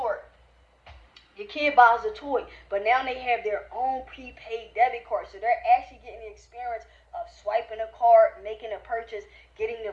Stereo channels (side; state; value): both; identical; correlation 1.00